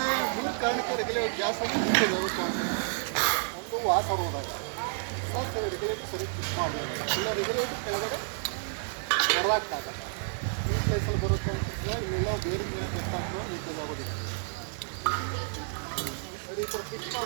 ಮೂರು ಕಾರಣಕ್ಕೆ ರೆಗ್ಯುಲೇಟರ್ ಗ್ಯಾಸ್ ಲೀಕೇಜ್ ಆಗುತ್ತೆ ಅಂತ. ಒಂದು ವಾಸ ಹೋದಾಗ ರೆಗ್ಯುಲೇಟರ್ ಸರಿ ಫಿಕ್ಸ್ ಮಾಡಬೇಕು, ಇಲ್ಲ ರೆಗ್ಯುಲೇಟರ್ ಕೆಳಗಡೆ ಹೊರದಾಗ್ತಾಗ ಈ ಪ್ಲೇಸಲ್ಲಿ ಬರುತ್ತೆ ಅಂತಿದ್ರೆ ಇಲ್ಲೆಲ್ಲ ಬೇರೆ ಮೇಲೆ ಬೆಟ್ಟಾಗ್ತದೆ, ಲೀಕೇಜ್ ಆಗೋದಿಲ್ಲ. ಈ ಥರ ಫಿಕ್ಸ್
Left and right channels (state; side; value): silent; left; 58 dB below the other